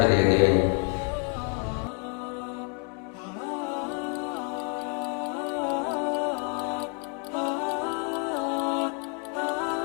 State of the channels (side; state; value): right; quieter; 35.9 dB